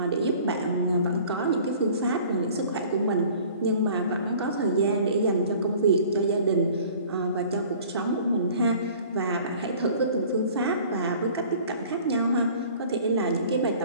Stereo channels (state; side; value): inverted; both; correlation -0.49